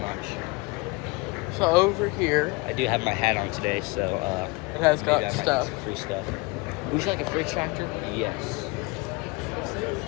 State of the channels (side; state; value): right; quieter; 26.0 dB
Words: not sure. So over here, I do have my hat on today, so it has got stuff. Free stuff. Would you like a fridge tractor? Yes.